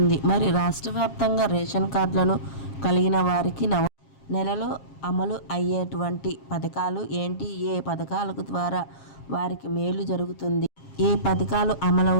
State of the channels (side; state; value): right; late; 7.3 ms